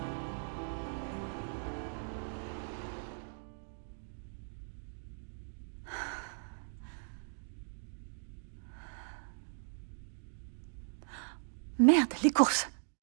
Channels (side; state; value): left; silent; digital silence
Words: Merde, les courses.